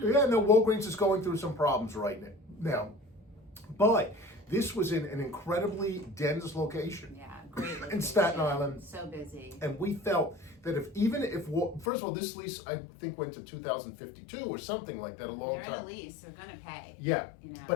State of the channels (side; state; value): right; drops out; at 11.9 s